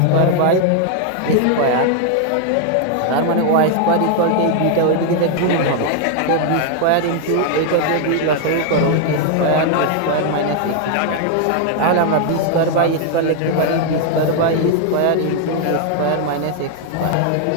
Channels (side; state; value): both; different; correlation 0.00